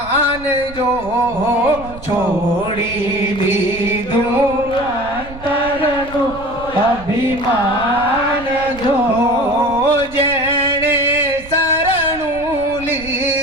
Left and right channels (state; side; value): noise; right; rumble, 16 dB below the sound